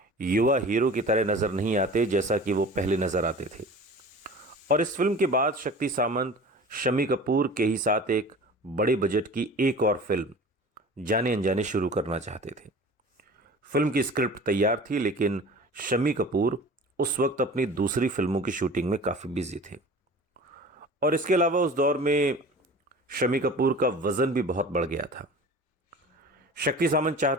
युवा हीरो की तरह नज़र नहीं आते जैसा कि वो पहले नज़र आते थे, और इस फिल्म के बाद शक्ति सामंत शम्मी कपूर के ही साथ एक बड़े बजट की एक और फिल्म जाने अनजाने शुरू करना चाहते थे। फिल्म की स्क्रिप्ट तैयार थी, लेकिन शम्मी कपूर उस वक्त अपनी दूसरी फिल्मों की शूटिंग में काफ़ी बिजी थे, और इसके अलावा उस दौर में शम्मी कपूर का वज़न भी बहुत बढ़ गया था। शक्ति सामंत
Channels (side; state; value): both; normal; correlation 0.40